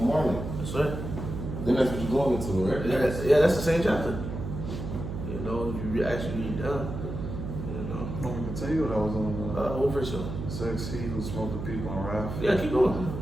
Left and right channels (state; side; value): noise; right; hum, 6 dB below the sound